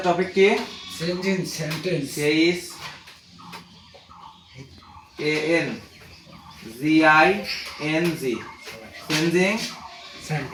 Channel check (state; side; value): identical; both; correlation 1.00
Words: টপিক কি? Changing sentence chess ANGING changing